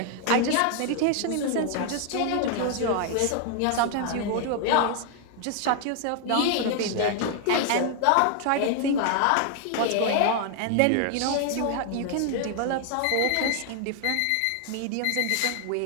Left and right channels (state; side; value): different; both; correlation 0.00